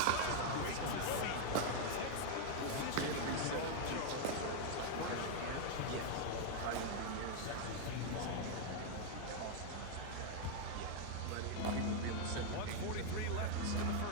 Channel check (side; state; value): both; different; correlation 0.00